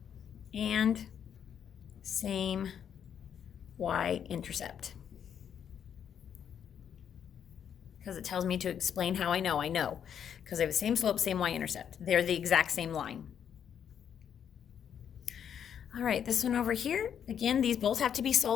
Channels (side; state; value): right; quieter; 8.5 dB